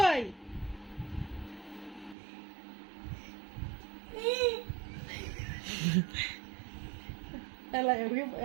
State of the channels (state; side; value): drops out; left; at 2.1 s